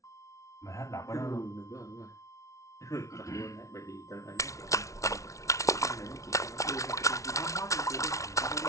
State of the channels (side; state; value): right; late; 0.15 ms